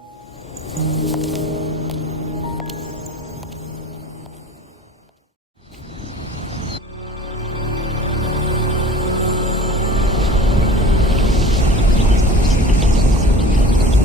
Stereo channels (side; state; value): both; normal; correlation 0.42